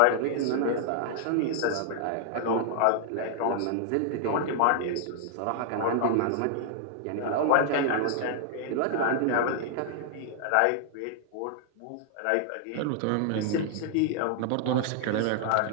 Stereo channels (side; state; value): both; different; correlation -0.01